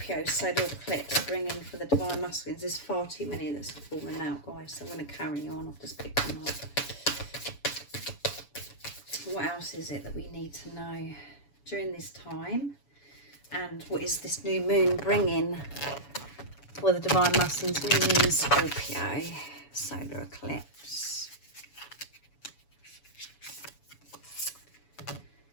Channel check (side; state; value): right; late; 7.1 ms